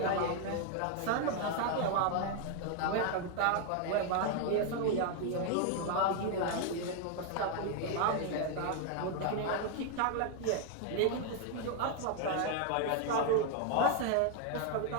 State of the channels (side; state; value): both; different; correlation 0.00